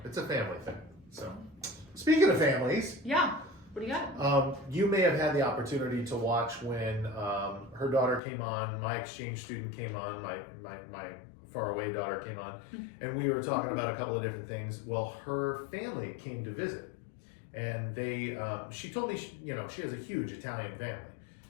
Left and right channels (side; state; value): right; drops out; at 8.2 s